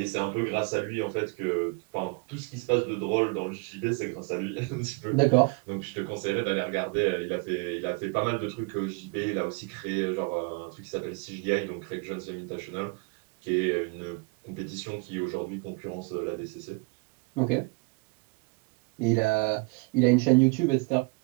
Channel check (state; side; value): quieter; left; 30.8 dB